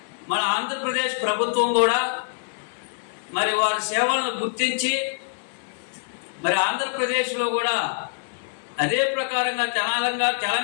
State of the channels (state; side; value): silent; right; digital silence